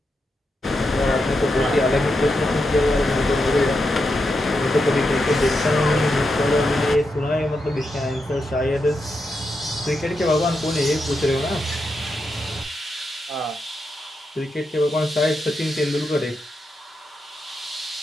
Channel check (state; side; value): normal; both; correlation 0.85